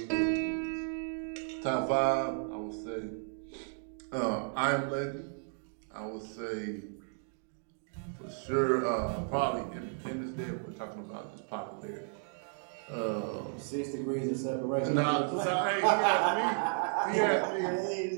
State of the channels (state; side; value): silent; left; 55 dB below the other